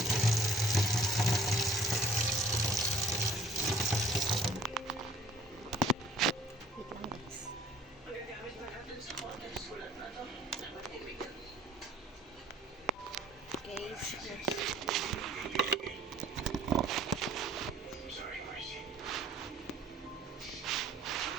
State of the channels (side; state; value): both; normal; correlation 0.53